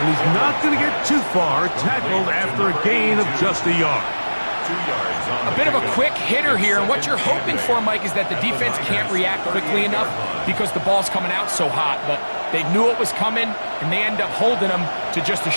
he's not going to get too far, tackled after a gain of just a yard. 2 yards on A bit of a quick hitter here, and what you're hoping for, Mike, is that the defense can't react quickly enough because the ball's coming out so hot, but they knew it was coming, and they end up holding them to just a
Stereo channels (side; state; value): both; inverted; correlation -1.00